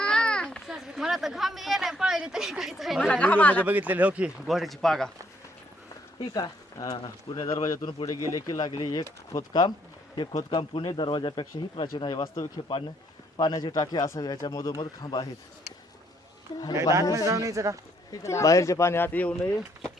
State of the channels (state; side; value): normal; both; correlation 0.69